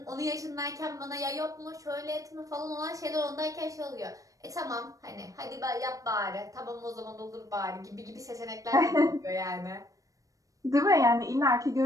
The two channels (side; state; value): left; late; 0.16 ms